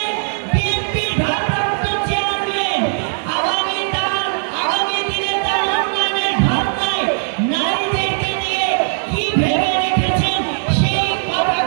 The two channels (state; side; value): silent; left; digital silence